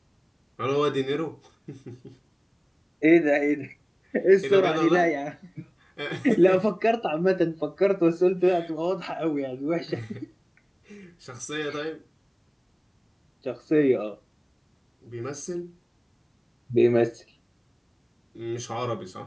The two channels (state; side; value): identical; both; correlation 1.00